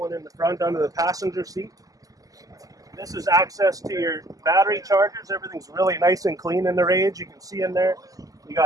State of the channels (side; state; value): left; late; 0.17 ms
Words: in the front under the passenger seat. This is access to your battery chargers. Everything's really nice and clean in the Rage. You can see in there, you